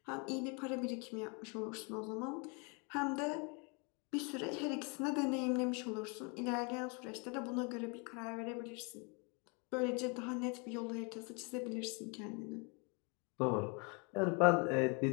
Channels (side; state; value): right; quieter; 33.0 dB